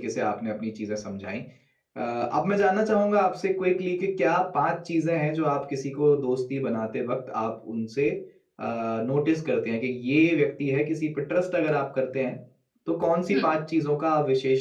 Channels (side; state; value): both; identical; correlation 1.00